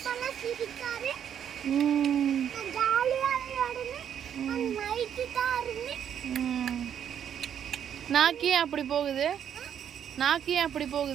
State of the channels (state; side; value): quieter; left; 9.0 dB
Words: நாக்கி அப்படி போகுது? நாக்கி அப்படி